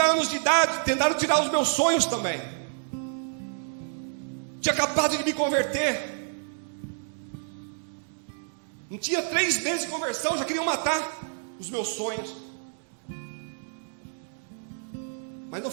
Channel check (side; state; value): left; silent; digital silence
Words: anos de idade, tentaram tirar os meus sonhos também. Tinha acabado de me converter. Não tinha 3 meses de conversão, já queriam matar os meus sonhos. Mas não